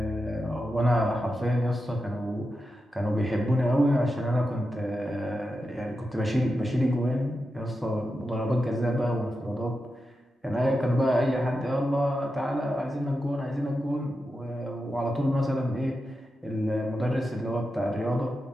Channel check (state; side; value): normal; both; correlation 0.89